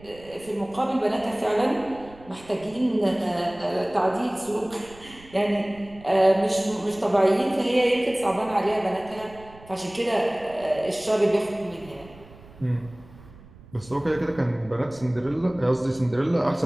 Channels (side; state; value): right; noise; rumble, 22 dB below the sound